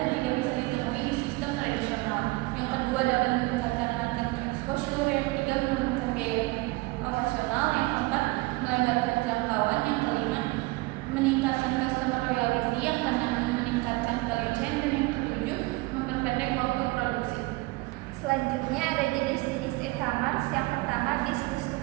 tidak bisa ditemui di sistem tradisional. Yang kedua, dapat meningkatkan market exposure. Yang ketiga, menurunkan biaya operasional. Yang keempat, melebarkan jangkauan. Yang kelima, meningkatkan customer loyalty. Yang keenam, meningkatkan value chain. Dan yang ketujuh, memperpendek waktu produksi. Selanjutnya ada jenis-jenis e-commerce. Yang pertama, business to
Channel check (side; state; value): left; quieter; 23.0 dB